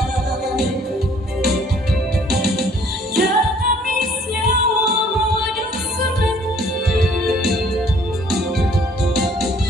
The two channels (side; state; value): both; normal; correlation 0.59